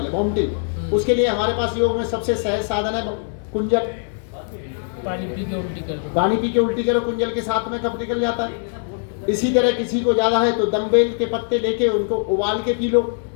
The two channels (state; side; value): silent; right; digital silence